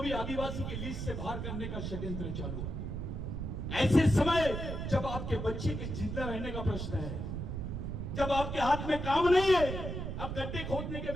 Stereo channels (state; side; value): noise; right; rumble, 4 dB below the sound